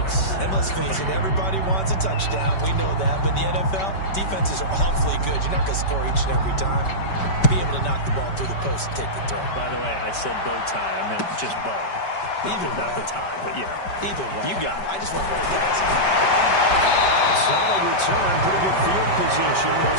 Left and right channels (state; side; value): late; right; 5.2 ms